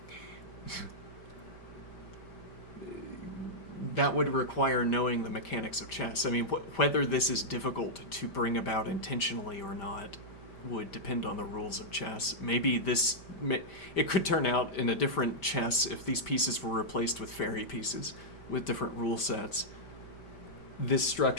that would require knowing the mechanics of chess. I mean, whether this is difficult to bring about intentionally or not would depend on the rules of chess. Maybe this... It could turn out in a different chess if these pieces were replaced with fairy pieces with different rule sets. This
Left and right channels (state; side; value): late; right; 5.1 ms